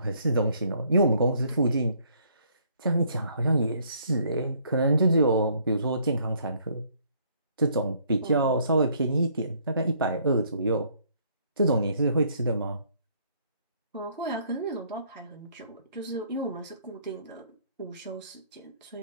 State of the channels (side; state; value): both; inverted; correlation -0.65